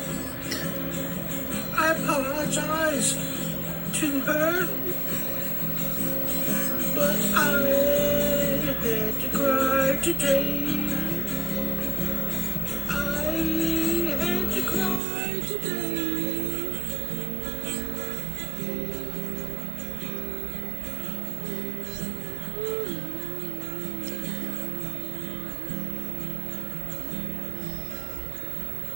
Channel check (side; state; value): left; drops out; at 15.0 s